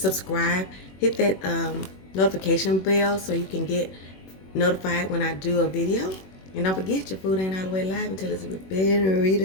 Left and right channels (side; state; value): right; late; 21 ms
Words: Hit that notification bell so you can get notified when I do a video. And don't forget, your food ain't all the way live until it's been